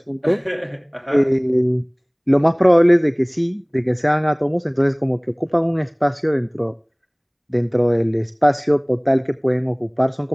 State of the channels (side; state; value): both; identical; correlation 1.00